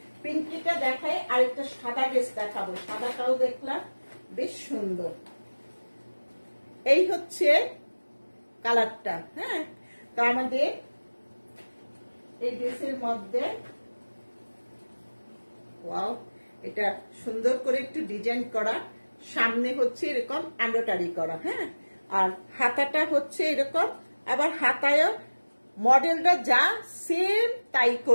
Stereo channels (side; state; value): both; inverted; correlation -1.00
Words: পিঙ্কিটা দেখাই, আর একটা সাদা ড্রেস দেখাবো। সাদাটাও দেখলাম বেশ সুন্দর। এই হচ্ছে কালারটা। হ্যাঁ, তো আমাদের এই ড্রেসের মধ্যে ওয়াও, এটা সুন্দর করে একটু ডিজাইন করা, সামনে হচ্ছে এরকম এমব্রয়ডারি করা। হ্যাঁ, আর হাতাটা হচ্ছে এরকম, আবার হাতায়ও মডেলটা যা সেম তাই